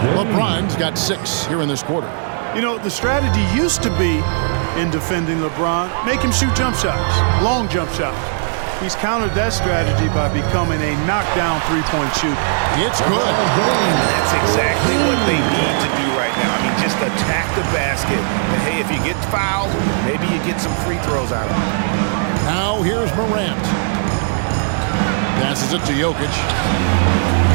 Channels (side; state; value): left; silent; digital silence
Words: LeBron's got 6 here in this quarter. You know, the strategy used to be in defending LeBron, make him shoot jump shots, long jump shots. He's countered that strategy by becoming a knockdown three-point shooter. It's good. And that's exactly what they need to do right now. I mean, just attack the basket. And, hey, if you get fouled, maybe you get some free throws out of it. Now here's Morant. Passes it to Jokic.